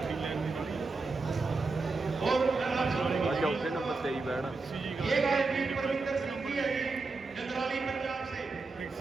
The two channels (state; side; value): quieter; left; 3.9 dB